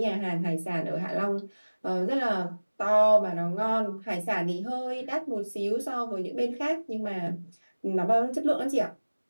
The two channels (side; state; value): both; inverted; correlation -1.00